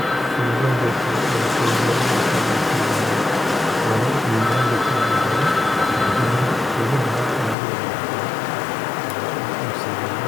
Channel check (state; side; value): drops out; right; at 7.6 s